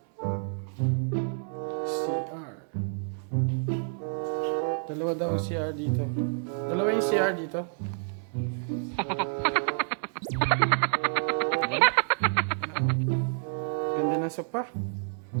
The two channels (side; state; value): left; silent; 59 dB below the other